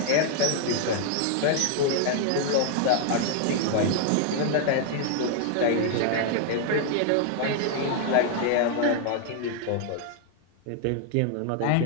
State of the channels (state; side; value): different; both; correlation 0.00